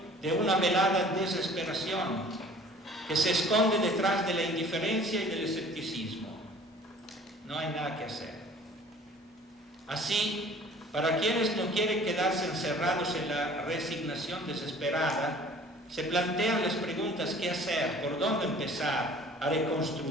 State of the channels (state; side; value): normal; both; correlation 0.49